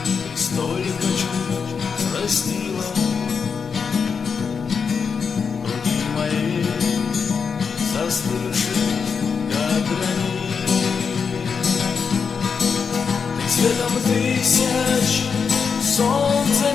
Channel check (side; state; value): right; quieter; 5.9 dB